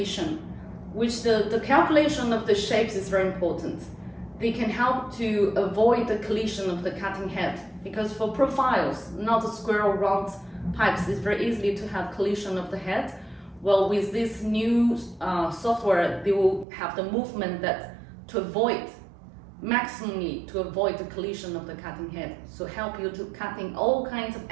which the calculation of the shapes is very important. They can help to avoid the collision of the cutting head, because for profiles, not a square or round pipes, it's very easy to have collision of the head. Well, with this new software, they will have the movement that maximally to avoid the collision of the cutting head. So help you to cutting all kinds of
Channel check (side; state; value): left; drops out; at 16.7 s